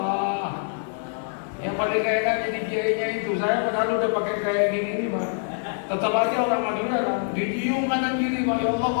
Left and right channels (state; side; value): silent; right; digital silence